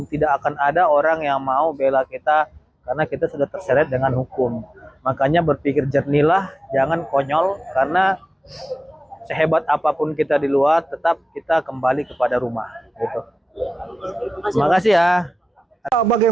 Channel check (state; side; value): normal; both; correlation 0.95